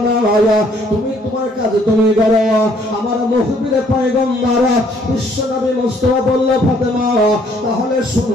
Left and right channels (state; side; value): normal; both; correlation 0.64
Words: না, তুমি তোমার কাজ তুমি করো। আমার মুখবির পয়গম্বর বিশ্ব নবী মুস্তাফা বলল, ফাতেমা তাহলে